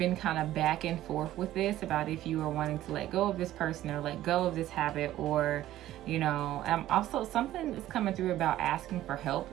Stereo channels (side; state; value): left; quieter; 13.9 dB